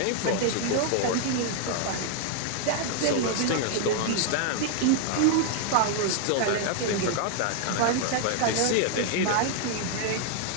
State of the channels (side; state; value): both; different; correlation 0.00